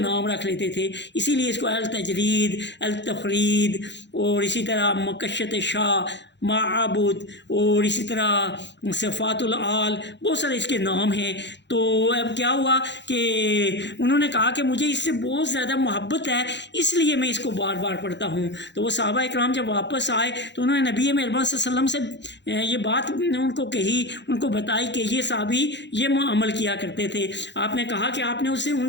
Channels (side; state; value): right; late; 0.52 ms